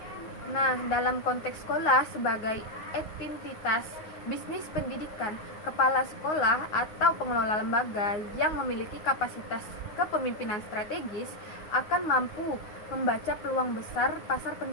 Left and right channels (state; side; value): late; right; 9.6 ms